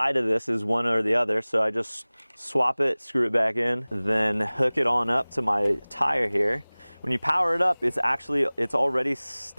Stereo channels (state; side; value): inverted; both; correlation -1.00